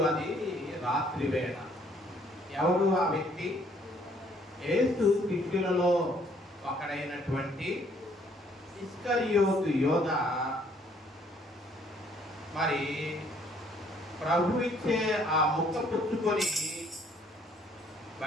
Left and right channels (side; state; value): both; normal; correlation 0.63